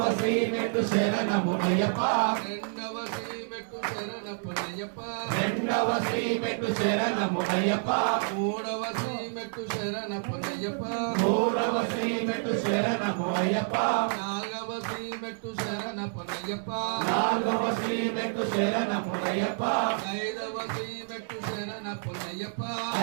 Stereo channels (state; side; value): silent; left; digital silence